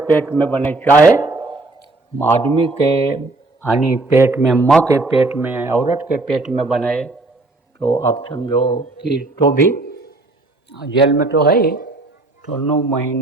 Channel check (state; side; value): quieter; left; 3.1 dB